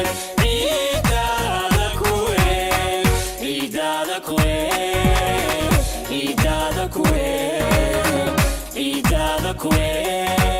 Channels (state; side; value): identical; both; correlation 1.00